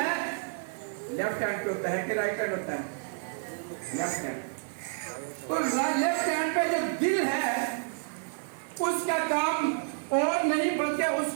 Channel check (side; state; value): left; silent; digital silence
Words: لیفٹ ہینڈ پہ ہوتا ہے کہ رائٹ ہینڈ ہوتا ہے؟ Left hand. تو لیفٹ ہینڈ پہ جو دل ہے اس کا کام اور نہیں بلکہ اس